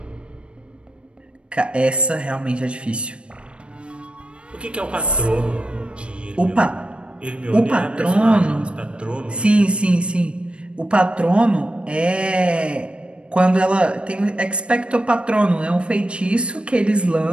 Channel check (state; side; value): late; left; 0.058 ms